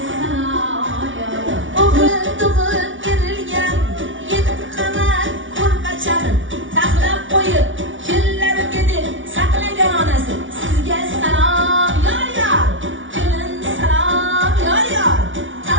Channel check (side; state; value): left; late; 0.56 ms